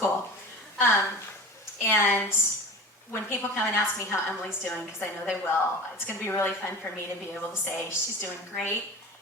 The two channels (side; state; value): both; normal; correlation 0.35